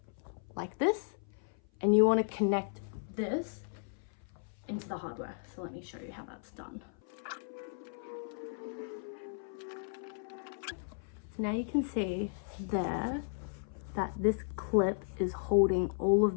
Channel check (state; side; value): silent; right; 54 dB below the other